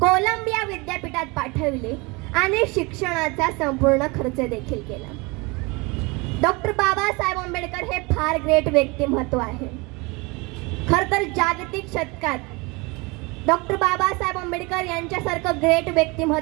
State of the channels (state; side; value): quieter; left; 26.5 dB